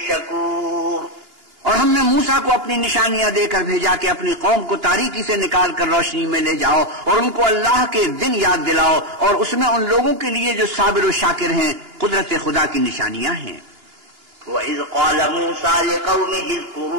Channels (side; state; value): left; late; 2.9 ms